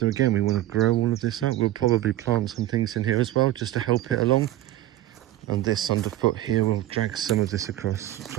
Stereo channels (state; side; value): quieter; left; 14.4 dB